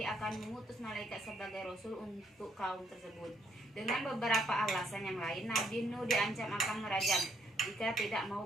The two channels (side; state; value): both; normal; correlation 0.71